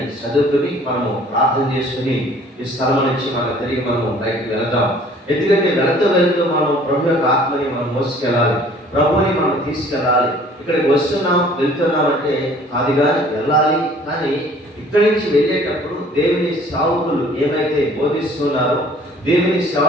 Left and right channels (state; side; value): normal; both; correlation 0.53